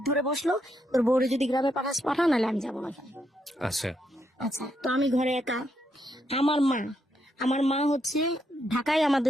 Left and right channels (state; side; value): normal; both; correlation 0.78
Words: ধরে বসলো, তোর বউরে যদি গ্রামে পাঠা, নাহলে আমি যাবো না এখানে। আচ্ছা আচ্ছা, তো আমি ঘরে একা। আমার মা হচ্ছে ঢাকায়